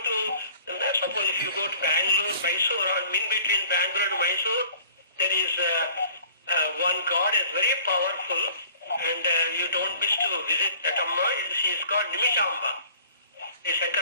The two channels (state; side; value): inverted; both; correlation -0.50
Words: suppose if you go to Bengaluru, Mysore, or in between Bengaluru and Mysore, there is one god is very powerful, and you don't miss to visit that Amma. She is called Nimishamba. The